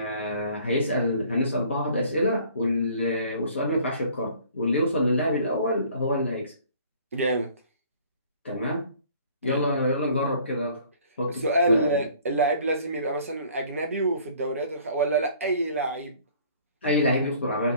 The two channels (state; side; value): inverted; both; correlation -0.54